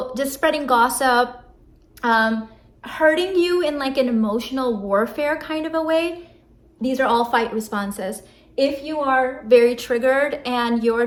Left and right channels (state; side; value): identical; both; correlation 1.00